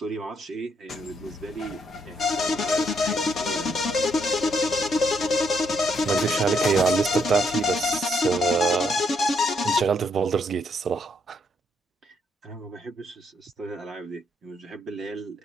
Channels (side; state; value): both; normal; correlation 0.74